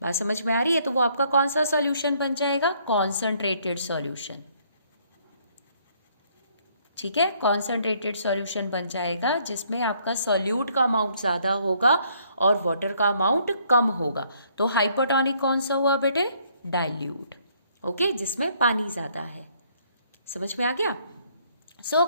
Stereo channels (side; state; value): both; inverted; correlation -0.66